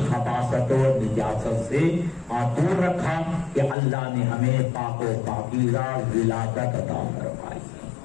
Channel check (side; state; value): right; drops out; at 3.8 s